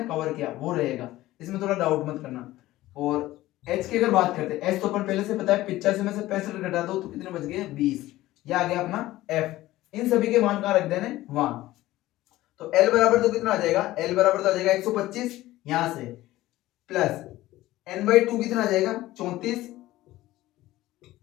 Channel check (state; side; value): quieter; right; 16.5 dB